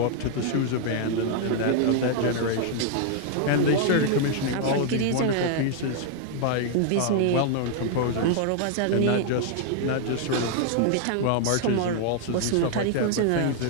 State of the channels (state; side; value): different; both; correlation 0.00